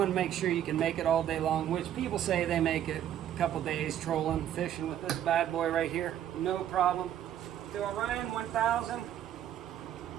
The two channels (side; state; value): left; quieter; 10.9 dB